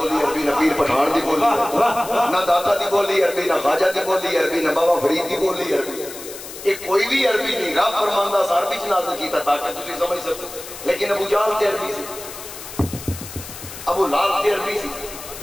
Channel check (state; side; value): noise; left; hiss, 13 dB below the sound